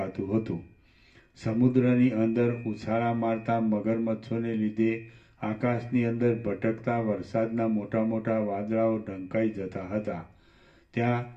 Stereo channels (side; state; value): both; identical; correlation 1.00